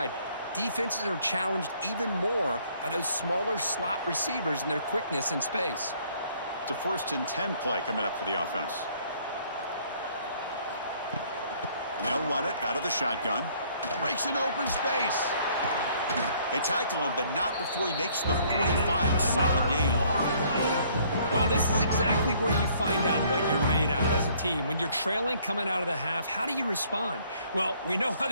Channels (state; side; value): inverted; both; correlation -0.62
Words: Defenses are challenged even more by those smaller slot receivers and their quickness in space. It's a 1st and 10 play coming up for the offense. And they'll run it out of the shotgun. Breaks an open space. They tackle him, but not before he makes the 45, a solid gain. Well, this is exactly where you find out what you're made of as a team. When you're trailing coming out of the half, how do you respond? Well, we know how